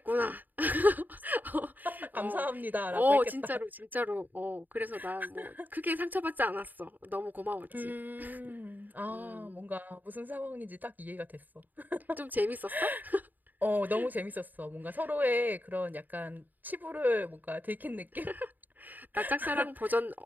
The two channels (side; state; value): left; late; 0.086 ms